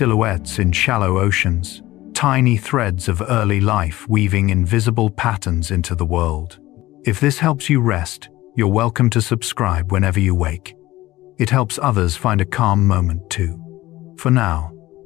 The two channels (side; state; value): right; quieter; 17.2 dB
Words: in shallow oceans, tiny threads of early life weaving invisible patterns into the world. If this helps you rest, you're welcome to subscribe whenever you wake. It helps others find a calm moment too. For now,